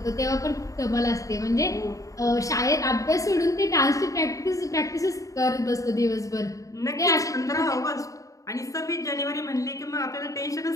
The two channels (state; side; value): late; right; 0.16 ms